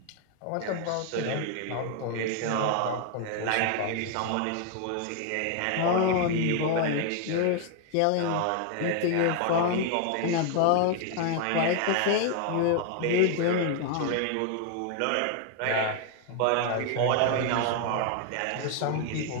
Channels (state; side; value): different; both; correlation 0.00